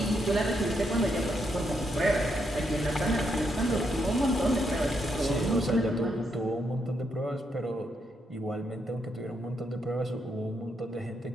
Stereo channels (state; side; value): normal; both; correlation 0.79